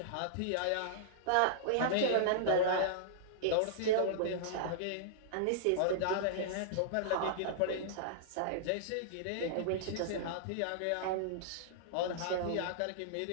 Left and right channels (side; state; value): both; different; correlation -0.02